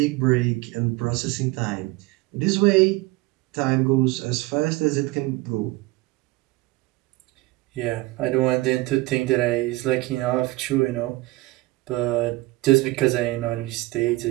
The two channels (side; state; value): left; quieter; 20.4 dB